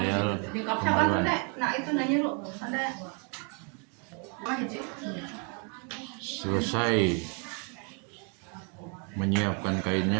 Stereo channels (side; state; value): left; quieter; 34.7 dB